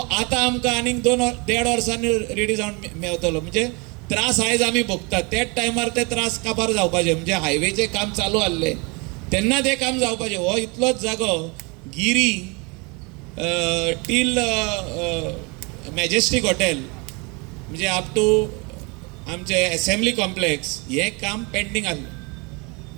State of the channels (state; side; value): quieter; left; 29.6 dB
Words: आमकां आनीक 2.5 वर्सांनी रेडी जावन मेवतलो. म्हणजे त्रास आयज आमी भोगतात, त्याच टायमार ते त्रास काबार जावपाचे. म्हणजे हायवेचें काम चालू आसलें तेन्ना तें काम जावपाचें. हो इतलोच जागो गिरी टील मॅजेस्टीक हॉटेल म्हणजे अप टू आमचे असेंब्ली कॉम्प्लेक्स हें काम पेंडींग आसलें.